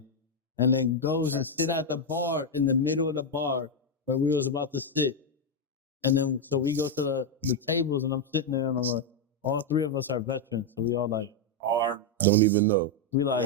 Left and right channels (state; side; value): normal; both; correlation 0.02